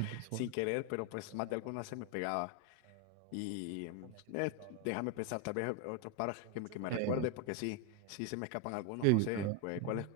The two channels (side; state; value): both; different; correlation 0.01